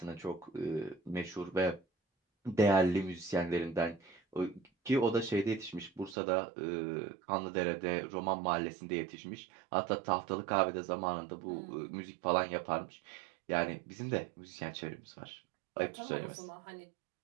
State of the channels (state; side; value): drops out; left; at 6.2 s